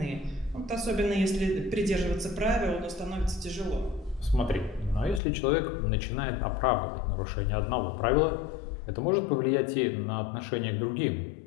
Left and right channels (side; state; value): right; drops out; at 5.2 s